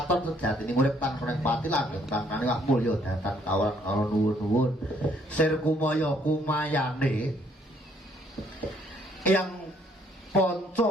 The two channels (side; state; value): both; normal; correlation 0.66